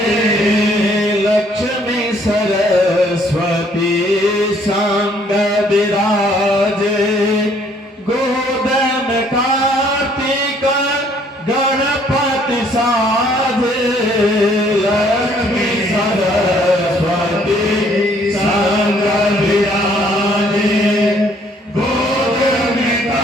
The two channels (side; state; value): both; normal; correlation 0.63